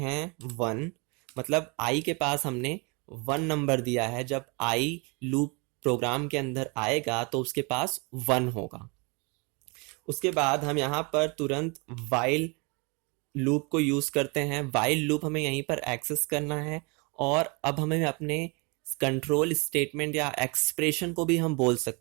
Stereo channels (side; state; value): left; quieter; 30.5 dB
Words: 1, मतलब आई के पास हमने 1 नंबर दिया है। जब आई लूप प्रोग्राम के अंदर आएगा तो उसके पास 1 होगा। उसके बाद हम यहाँ पर तुरंत वाइल लूप को यूज करते हैं। वाइल लूप हमें यहीं पर एक्सेस करना है और अब हमें अपने कंट्रोल स्टेटमेंट या एक्सप्रेशन को भी हम बोल